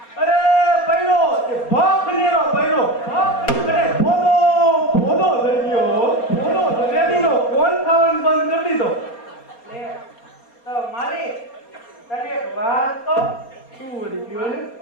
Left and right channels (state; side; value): late; right; 4.3 ms